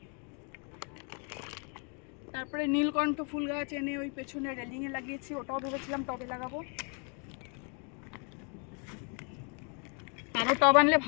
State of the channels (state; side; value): quieter; right; 38.3 dB